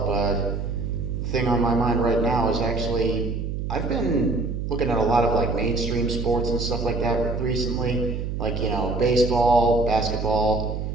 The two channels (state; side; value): noise; right; hum, 3 dB below the sound